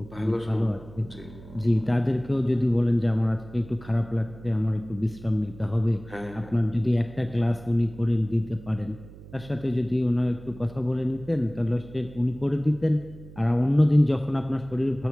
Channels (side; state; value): right; noise; hum, 18 dB below the sound